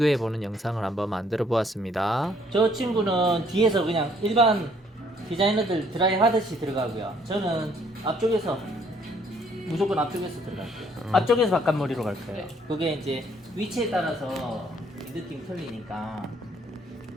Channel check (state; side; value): normal; both; correlation 0.64